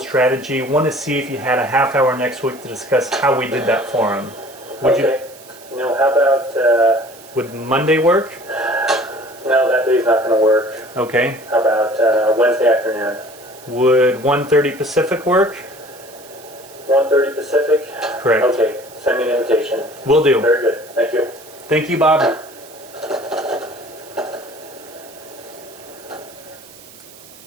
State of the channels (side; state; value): right; noise; hiss, 21 dB below the sound